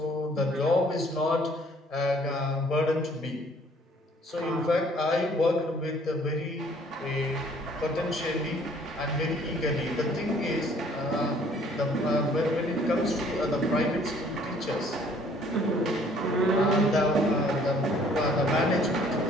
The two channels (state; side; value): normal; both; correlation 0.58